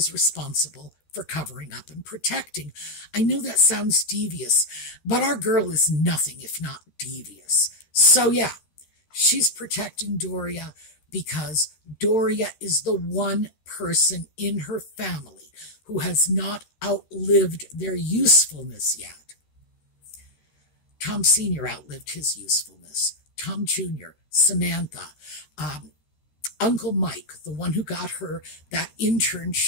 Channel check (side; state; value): right; late; 13 ms